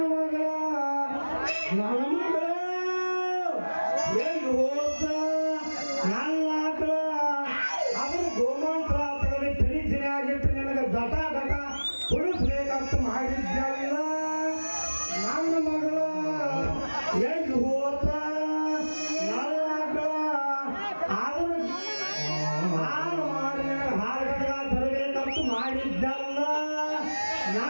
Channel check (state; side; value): inverted; both; correlation -1.00